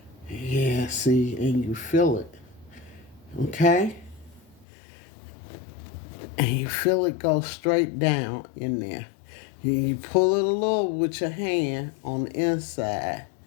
yeah, see, and you feel it. Okay? And you feel it go straight down in there. You pull it a little with your hand on the inside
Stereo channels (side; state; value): right; drops out; at 4.7 s